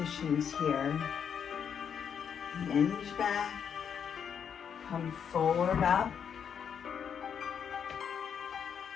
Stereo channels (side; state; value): right; quieter; 7.6 dB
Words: here. Hinge back. Come forward up.